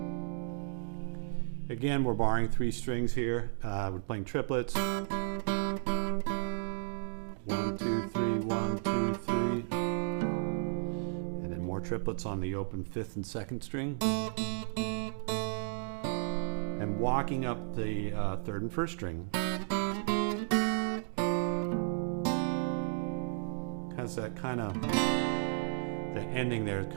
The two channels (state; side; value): silent; left; digital silence